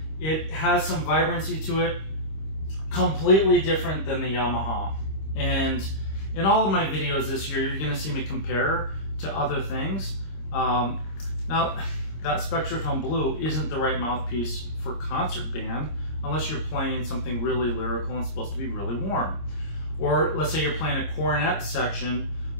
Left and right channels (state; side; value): late; right; 26 ms